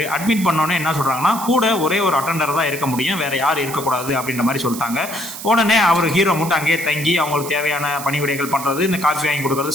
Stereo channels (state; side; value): noise; right; hiss, 10 dB below the sound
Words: அட்மிட் பண்ணோன்னே என்ன சொல்றாங்கன்னா, கூட ஒரே ஒரு அட்டெண்டர் தான் இருக்க முடியும், வேற யாரும் இருக்கக்கூடாது அப்படின்ற மாதிரி சொல்லிட்டாங்க. உடனே அவர் ஹீரோ மட்டும் அங்கேயே தங்கி அவங்களுக்கு தேவையான பணிவிடைகள் பண்றது, இந்த காஃபி வாங்கி